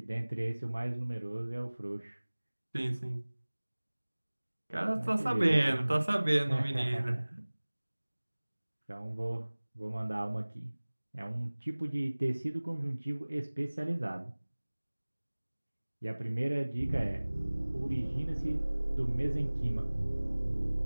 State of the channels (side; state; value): both; inverted; correlation -1.00